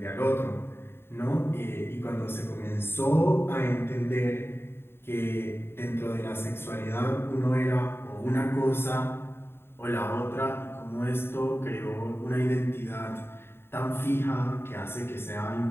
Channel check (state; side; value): late; right; 0.11 ms